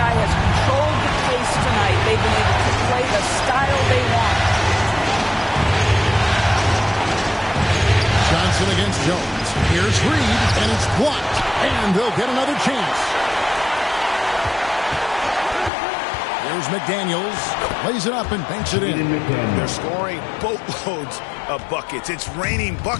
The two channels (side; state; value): right; drops out; at 15.7 s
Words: has controlled the pace tonight. They've been able to play the style they want. Johnson against Jones. Here's Reed, and it's blocked. And they'll get another chance. Here's McDaniels. Lays it up and banks it in. They're scoring boatloads of buckets. It's raining